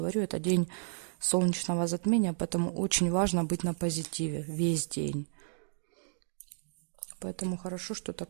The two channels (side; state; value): left; silent; digital silence